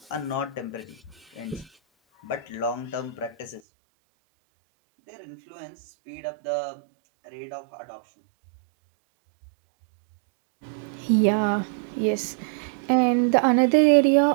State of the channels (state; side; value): drops out; left; at 3.6 s